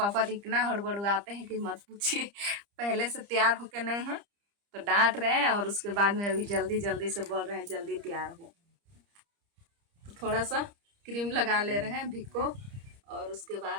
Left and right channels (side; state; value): left; late; 30 ms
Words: तो इतना हड़बड़ाते हैं कि मत पूछिए। पहले से तैयार होके नहीं है तो डांट रहे हैं और उसके बाद में अभी जल्दी जल्दी से बोल रहे हैं जल्दी तैयार हो। तो थोड़ा सा क्रीम लगा ले रहे हैं भिको और उसके